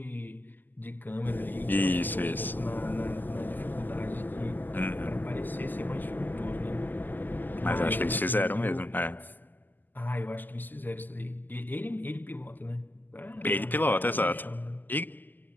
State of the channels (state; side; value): late; right; 0.087 ms